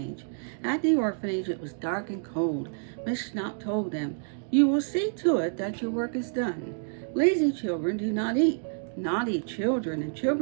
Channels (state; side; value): silent; left; digital silence